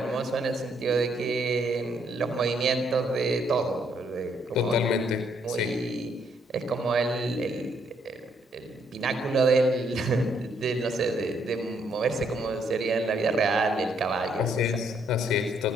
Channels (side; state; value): both; normal; correlation 0.71